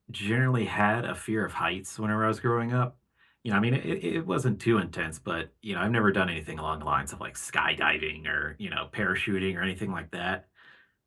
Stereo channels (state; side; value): identical; both; correlation 1.00